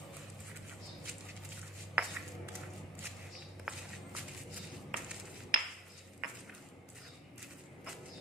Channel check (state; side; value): normal; both; correlation 0.42